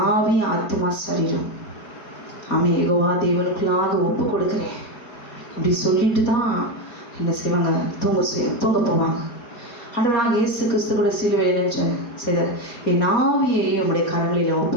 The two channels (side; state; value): right; late; 4.3 ms